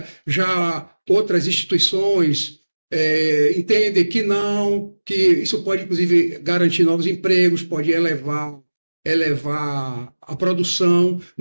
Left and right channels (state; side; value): inverted; both; correlation -1.00